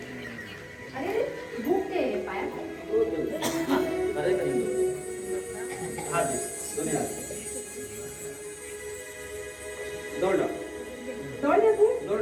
अरे भूक ते पाया अरे कधी हात दे कोणी हात दोडा दौड तू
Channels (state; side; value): identical; both; correlation 1.00